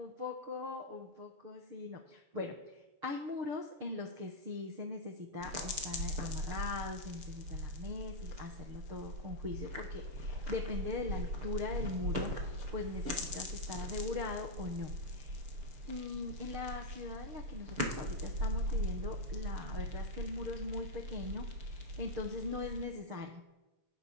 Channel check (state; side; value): late; left; 6.8 ms